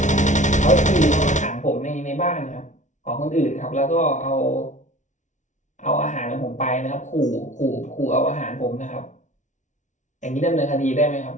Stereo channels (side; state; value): right; late; 0.36 ms